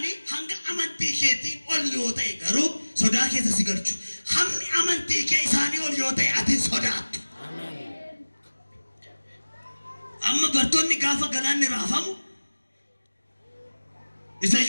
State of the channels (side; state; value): both; inverted; correlation -1.00